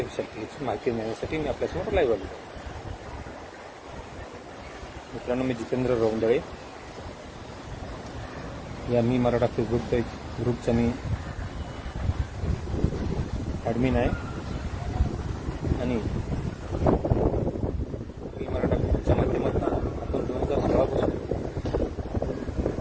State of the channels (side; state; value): both; identical; correlation 1.00